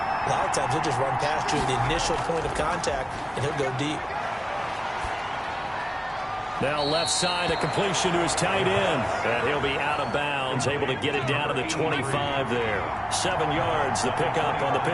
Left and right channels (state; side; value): identical; both; correlation 1.00